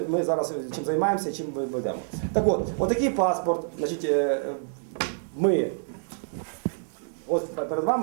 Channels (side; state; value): left; silent; digital silence